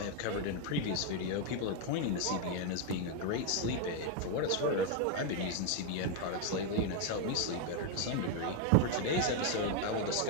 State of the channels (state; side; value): different; both; correlation 0.01